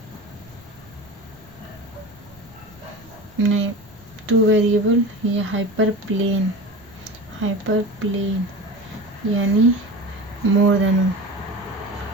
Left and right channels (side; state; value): right; noise; rumble, 28 dB below the sound